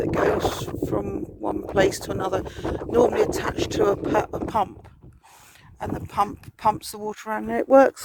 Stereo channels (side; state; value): both; identical; correlation 1.00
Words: goes from one place to another, normally attached to a pump, and the pump pumps the water around, and it works